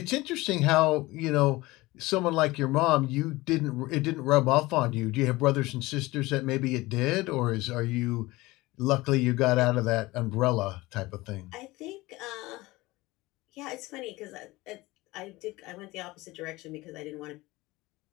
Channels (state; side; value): quieter; right; 20.3 dB